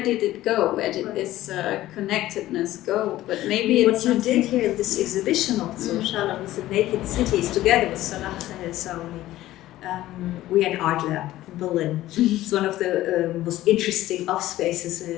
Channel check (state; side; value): quieter; right; 15.2 dB